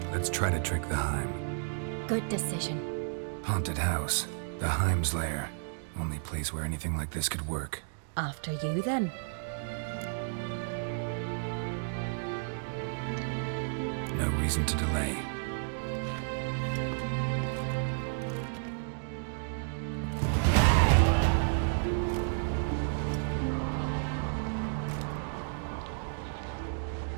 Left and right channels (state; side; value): silent; left; digital silence